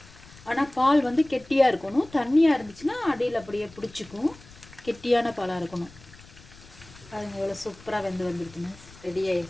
ஆனால் பால் வந்து கெட்டியாக இருக்கணும். தண்ணியாக இருந்துச்சுன்னா அடியில் அப்படியே பிடிச்சிக்கும். கெட்டியான பாலாக இருக்கணும். பாருங்க எவ்வளோ சூப்பராக வந்துருக்குன்னு. ரெடி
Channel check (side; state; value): left; noise; rumble, 22 dB below the sound